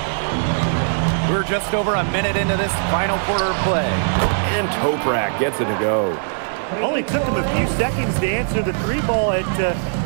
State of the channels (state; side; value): silent; left; digital silence